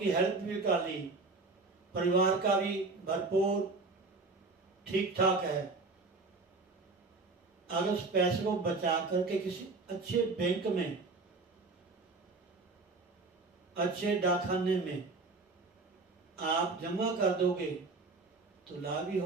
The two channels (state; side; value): quieter; left; 3.7 dB